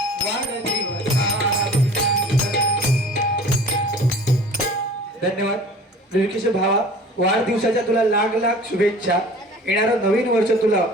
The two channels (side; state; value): both; normal; correlation 0.45